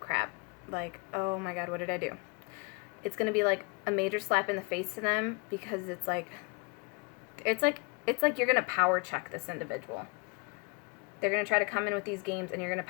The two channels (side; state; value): right; quieter; 31.0 dB